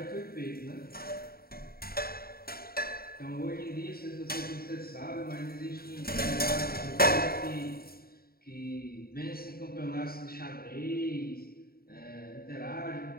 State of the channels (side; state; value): right; late; 0.44 ms